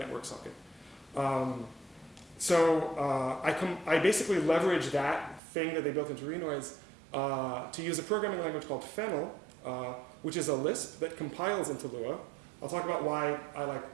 socket. I basically leverage that thing that they built into Renoise to use a programming language called Fennel, which is a Lisp that compiles into Lua. I'll talk about why I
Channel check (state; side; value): drops out; left; at 5.4 s